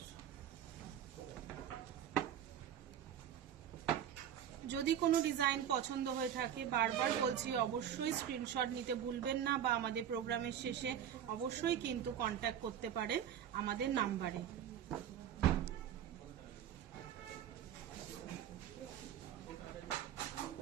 যদি কোনো ডিজাইন পছন্দ হয়ে থাকে বারবার বলছি অবশ্যই স্ক্রিনশট নিতে ভুলবেন না, বা আমাদের প্রোগ্রামের শেষে অবশ্যই কিন্তু কন্ট্যাক্ট করতে পারেন আমাদের নাম্বারে।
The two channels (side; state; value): left; quieter; 9.8 dB